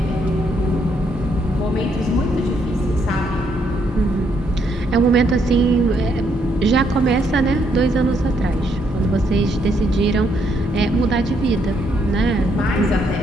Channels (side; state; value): both; normal; correlation 0.74